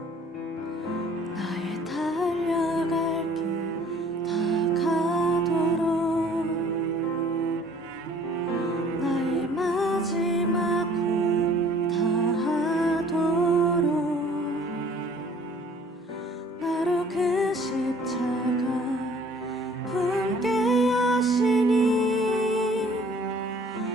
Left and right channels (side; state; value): both; normal; correlation 0.54